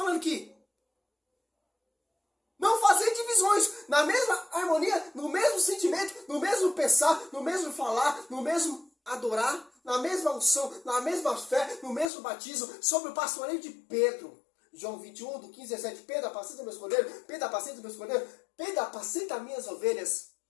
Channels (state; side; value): drops out; right; at 12.1 s